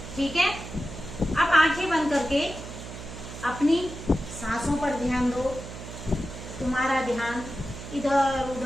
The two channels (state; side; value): noise; right; hum, 11 dB below the sound